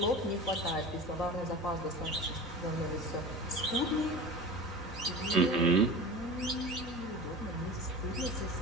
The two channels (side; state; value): both; normal; correlation 0.33